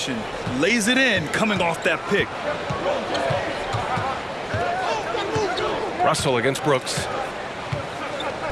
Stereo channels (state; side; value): identical; both; correlation 1.00